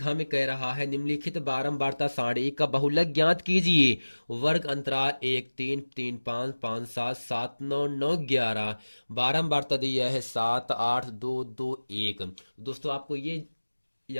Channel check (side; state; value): both; inverted; correlation -1.00